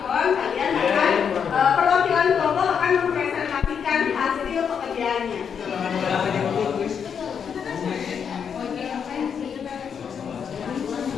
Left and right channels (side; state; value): right; quieter; 7.2 dB